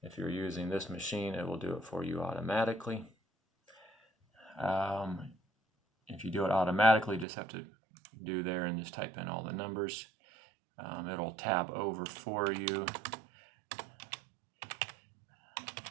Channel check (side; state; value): left; drops out; at 7.2 s